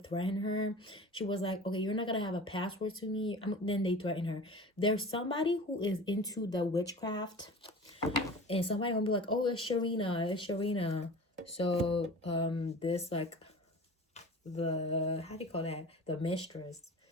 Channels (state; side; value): normal; both; correlation 0.38